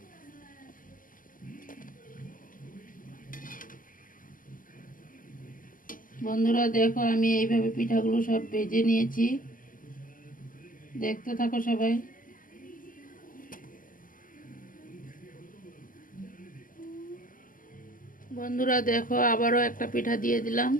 বন্ধুরা দেখো আমি এইভাবে পিঠাগুলো সব ভেজে নিয়েছি, দেখতে থাকো সবাই। বন্ধুরা দেখো আবারও একটা পিঠা দিয়ে দিলাম।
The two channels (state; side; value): late; right; 0.40 ms